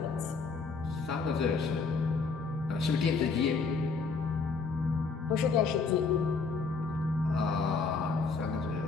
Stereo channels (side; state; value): right; quieter; 4.6 dB